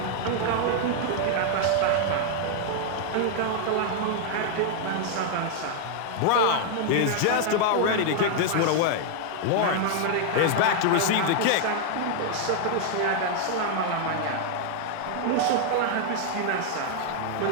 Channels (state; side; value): different; both; correlation 0.00